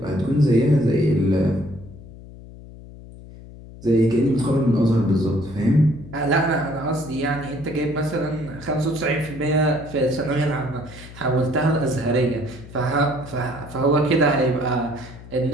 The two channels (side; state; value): left; noise; hum, 17 dB below the sound